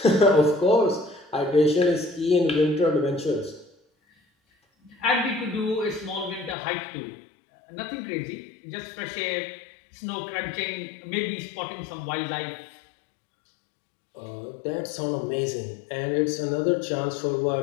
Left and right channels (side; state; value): right; drops out; at 6.6 s